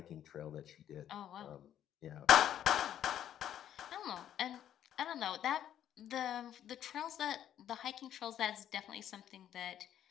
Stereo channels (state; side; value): quieter; right; 10.7 dB